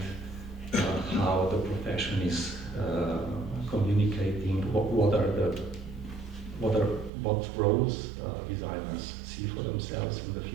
how the profession is communicating, what roles designers see for themselves in the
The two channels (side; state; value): left; drops out; at 7.1 s